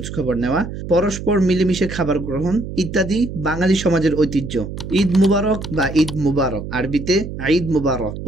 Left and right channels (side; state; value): right; noise; hum, 9 dB below the sound